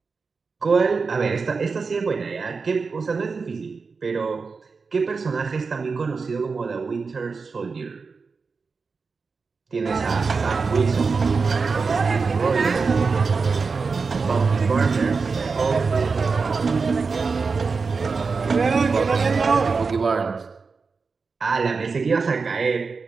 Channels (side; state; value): left; quieter; 4.7 dB